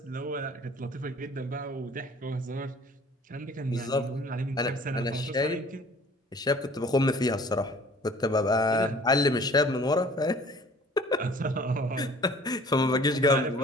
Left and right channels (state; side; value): normal; both; correlation 0.50